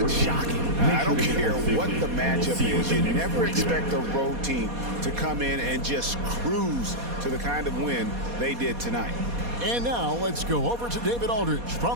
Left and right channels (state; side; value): late; left; 4.2 ms